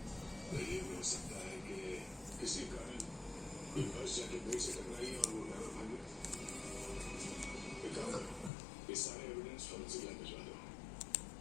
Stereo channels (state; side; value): drops out; right; at 8.5 s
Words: ये सारे एविडेंस फॉरेंसिक लैब भिजवा दो